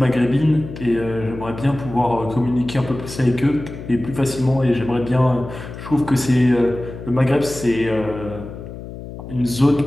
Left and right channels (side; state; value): left; noise; hum, 12 dB below the sound